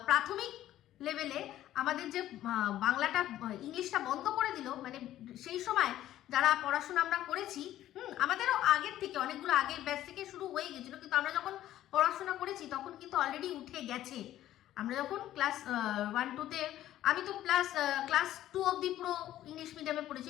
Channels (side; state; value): right; quieter; 13.2 dB